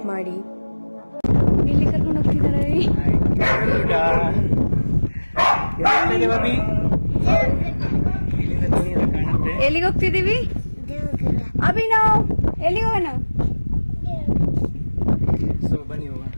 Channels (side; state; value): both; inverted; correlation -1.00